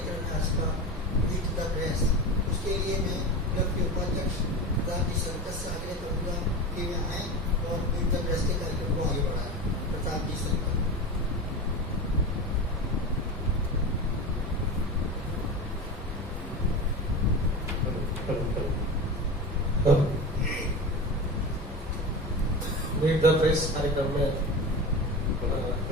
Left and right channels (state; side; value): normal; both; correlation 0.27